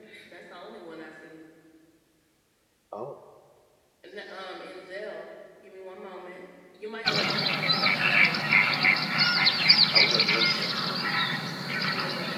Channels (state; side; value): identical; both; correlation 1.00